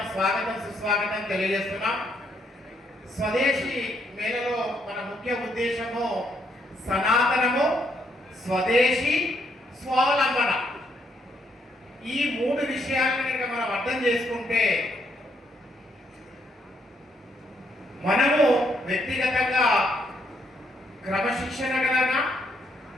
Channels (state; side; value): normal; both; correlation 0.73